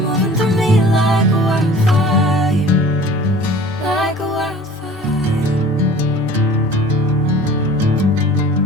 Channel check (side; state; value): both; normal; correlation 0.45